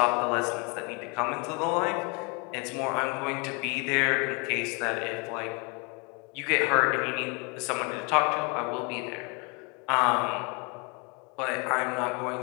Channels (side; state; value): right; quieter; 31.7 dB